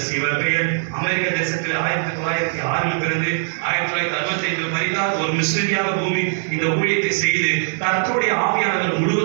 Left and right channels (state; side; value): silent; left; digital silence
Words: இவர் பெயர் அமெரிக்க தேசத்தில் 1906 பிறந்து 1965 மரித்தார். ஒரு மிஷனரியாக பூமி இந்த ஊழியத்தை செய்து கர்த்தருடைய ஆவியானவர்